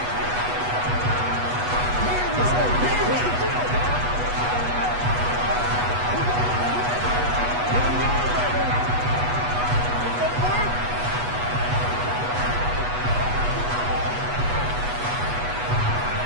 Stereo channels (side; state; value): left; late; 8.2 ms